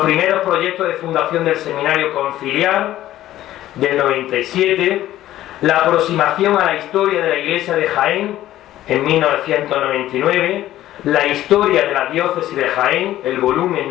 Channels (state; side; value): quieter; right; 13.8 dB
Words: primeros proyectos de fundación del Seminario Conciliar del 97, la aproximación a la historia de la Iglesia de Jaén en 1999, la historia de la diócesis de Jaén, el volumen